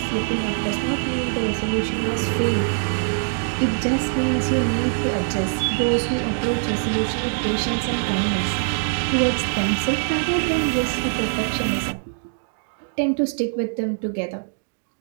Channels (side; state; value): left; silent; 63 dB below the other